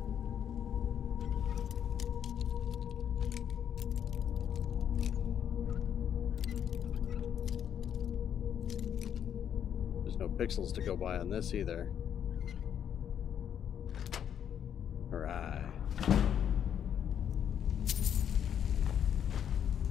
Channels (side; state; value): right; quieter; 9.0 dB